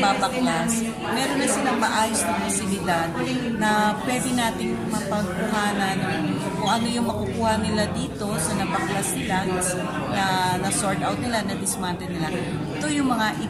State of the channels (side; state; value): both; identical; correlation 1.00